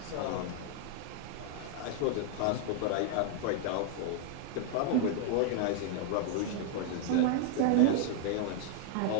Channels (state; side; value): different; both; correlation 0.00